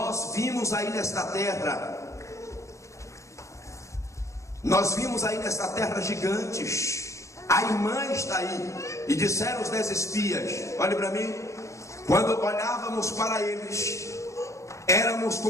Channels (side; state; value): right; late; 0.15 ms